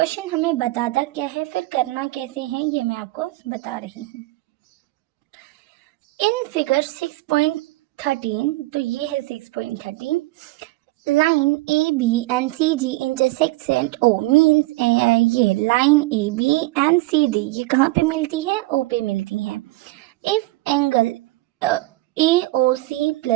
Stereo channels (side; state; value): left; quieter; 20.1 dB